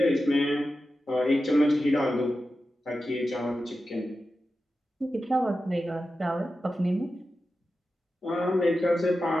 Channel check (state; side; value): normal; both; correlation 0.92